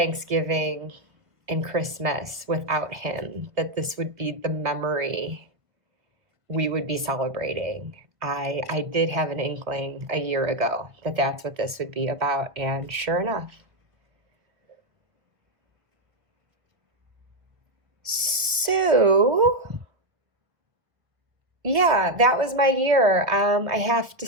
and Christmas without him, that this would be the memory we would be celebrating. I did have an inkling a year ago that that's what this would be about, and sure enough. So, yeah, that was my year. I have to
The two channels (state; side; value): late; left; 1.6 ms